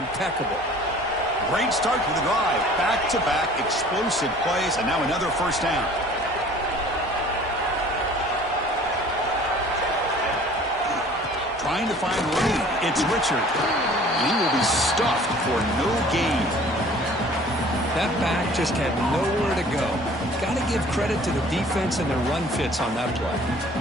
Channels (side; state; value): both; normal; correlation 0.50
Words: Great start to the drive. Back-to-back explosive plays, and now another first down. Trying to find Reed. It's Richard. And he will be stuffed for no gain. That back just had nowhere to go. Got to give credit to the defense and their run fits on that play.